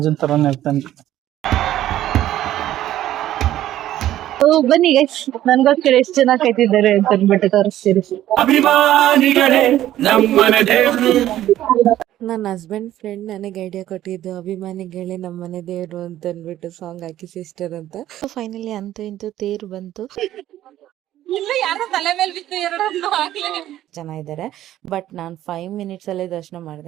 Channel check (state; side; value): quieter; left; 13.1 dB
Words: ತರಾನೇ ಇರ್ತಾನೆ. ಬನ್ನಿ ಗೈಸ್, ನನ್ಗೋಸ್ಕರ ಎಷ್ಟು ಜನ ಕಾಯ್ತಿದ್ದಾರೆ ಅಂತ ಅಂದ್ಬಿಟ್ಟು ತೋರಿಸ್ತೀರಿ. ನನ್ನ ಹಸ್ಬೆಂಡ್ ಫ್ರೆಂಡ್ ನನಗೆ ಐಡಿಯಾ ಕೊಟ್ಟಿದ್ದು ಅಭಿಮಾನಿಗಳೇ ನಮ್ಮನೆ ದೇವ್ರು ಅಂತ ಅಂದ್ಬಿಟ್ಟು ಸಾಂಗ್ ಹಾಕಿ ಸಿಸ್ಟರ್ ಅಂತ. ಫೈನಲಿ ಅಂತೂ ಇಂತೂ ತೇರು ಬಂತು. ಜನ ಇದ್ದಾರೆ, ಬಟ್ ನಾನು 5 ಮಿನಿಟ್ಸ್ ಅಲ್ಲೇ ದರ್ಶನ